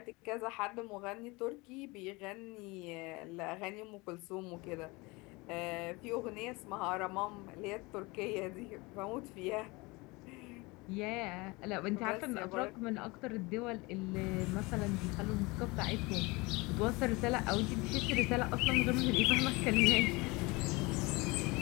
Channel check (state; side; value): quieter; right; 24.6 dB